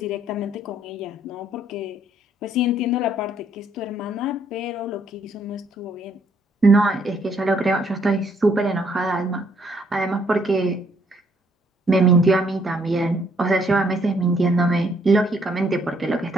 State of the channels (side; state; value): both; normal; correlation 0.68